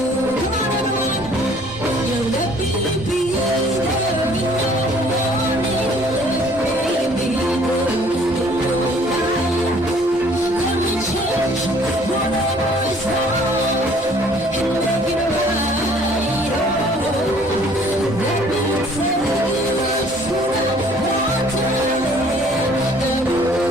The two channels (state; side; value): normal; both; correlation 0.57